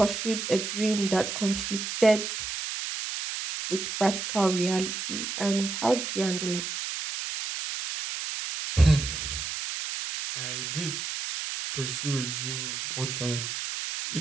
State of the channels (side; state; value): right; noise; hiss, 4 dB below the sound